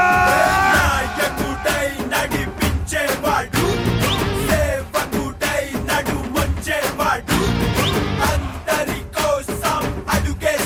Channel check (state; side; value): identical; both; correlation 1.00